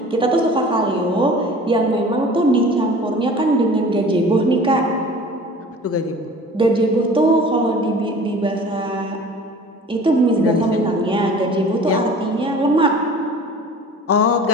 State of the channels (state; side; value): normal; both; correlation 0.43